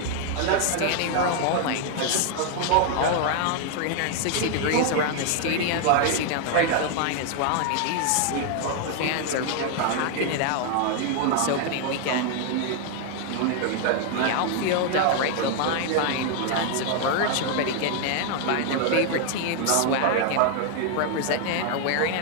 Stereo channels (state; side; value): different; both; correlation 0.00